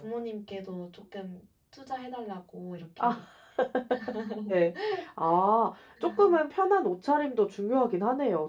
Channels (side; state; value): both; identical; correlation 1.00